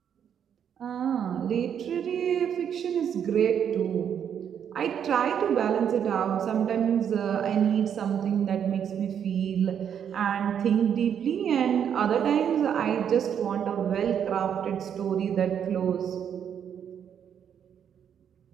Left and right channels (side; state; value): left; quieter; 8.5 dB